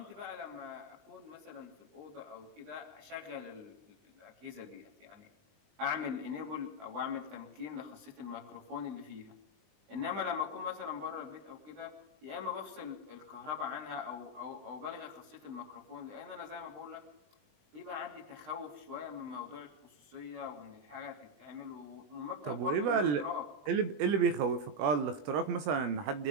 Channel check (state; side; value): late; left; 20 ms